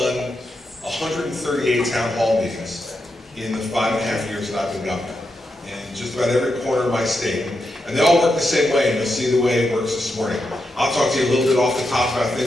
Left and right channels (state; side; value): normal; both; correlation 0.85